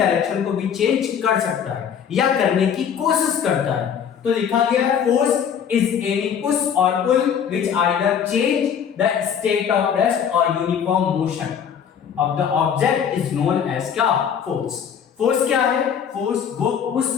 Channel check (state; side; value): quieter; right; 7.9 dB